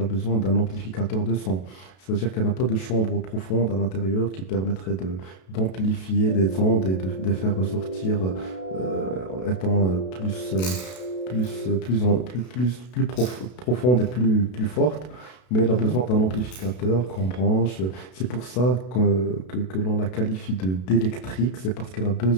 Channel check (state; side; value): late; right; 32 ms